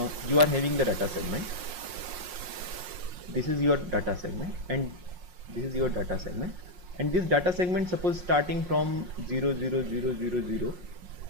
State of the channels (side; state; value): left; late; 5.6 ms